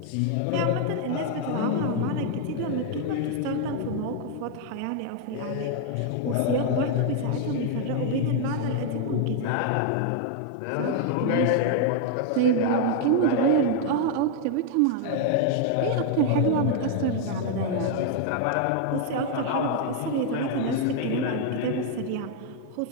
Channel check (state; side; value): different; both; correlation 0.00